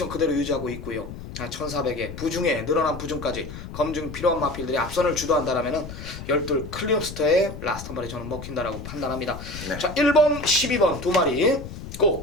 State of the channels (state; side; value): noise; left; rumble, 11 dB below the sound